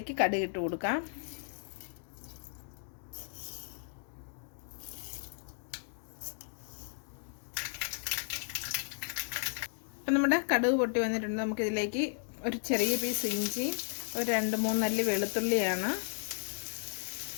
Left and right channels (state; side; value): silent; right; digital silence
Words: കടുക് ഇട്ട് കൊടുക്കാം. അപ്പം നമ്മുടെ കടുക് പൊട്ടി വന്നിട്ടുണ്ട്. നമുക്കിതിലേക്ക് ഒരു ചെറിയ പീസ് ഇഞ്ചി, ഒരു 2-3 അല്ലി വെളുത്തുള്ളിയാണ്,